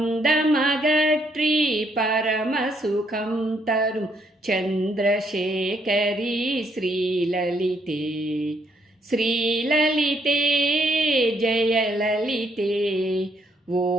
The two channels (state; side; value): normal; both; correlation 0.72